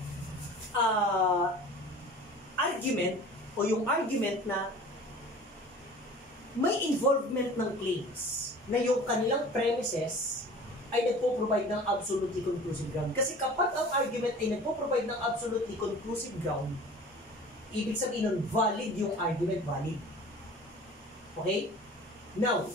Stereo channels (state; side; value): normal; both; correlation 0.42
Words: argument o yung argument na may involvement ng claims na yung kanilang premises ay nagpo-provide ng absolutely conclusive ground. Kasi kapag ang argument ay nagpo-provide ng absolutely conclusive ground, ibig sabihin nun, valid yung argument, valid. Okay? Now,